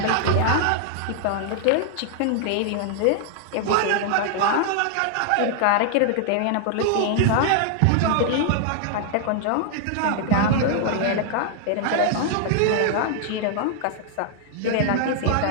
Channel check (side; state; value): both; different; correlation 0.00